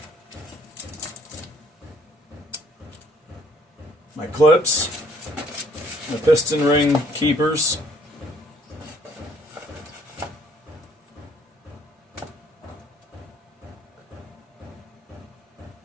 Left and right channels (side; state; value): both; normal; correlation 0.62